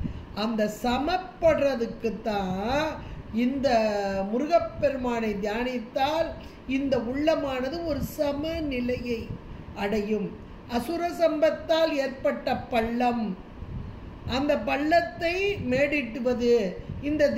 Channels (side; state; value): both; identical; correlation 1.00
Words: அந்த சமப்படுறதுக்குத்தான் இந்த முருகப்பெருமானை தியானித்தால் இந்த உள்ளமானது ஒரு சமநிலையை அடையும். அசுர சம்பத்தால் ஏற்பட்ட பள்ளம், அந்த பள்ளத்தை மேடிட்டுவது இந்த